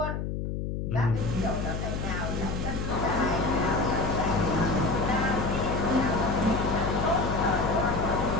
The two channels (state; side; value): noise; left; hum, 3 dB below the sound